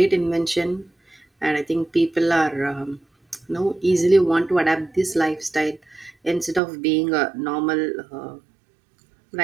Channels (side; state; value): left; drops out; at 6.6 s